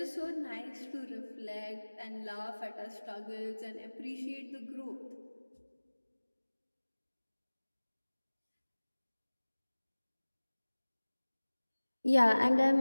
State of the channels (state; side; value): inverted; both; correlation -1.00